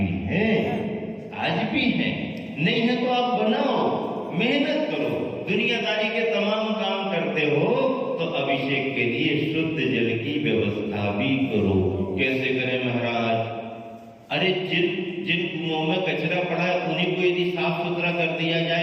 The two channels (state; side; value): identical; both; correlation 1.00